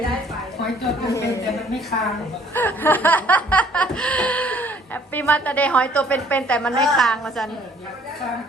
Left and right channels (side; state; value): both; normal; correlation 0.59